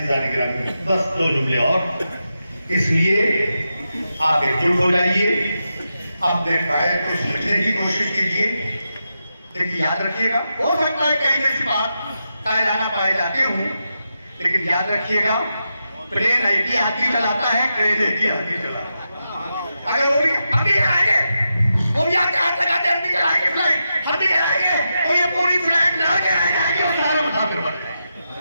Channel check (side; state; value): both; inverted; correlation -0.88